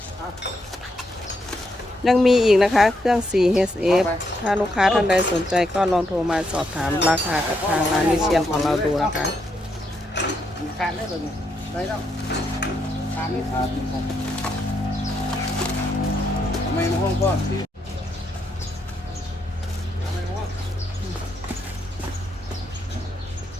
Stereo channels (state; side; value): normal; both; correlation 0.79